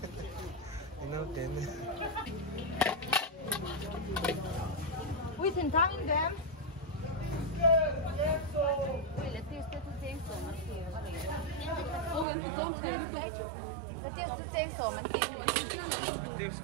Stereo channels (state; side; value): drops out; left; at 12.2 s